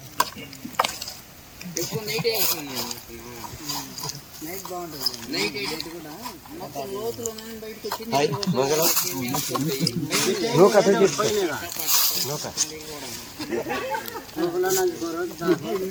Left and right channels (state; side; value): identical; both; correlation 1.00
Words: ఎక్కువ నైట్ నైట్ బాగుంటుంది. నైట్ అయితే కూడా మొత్తం లోతులో బయటకు వచ్చి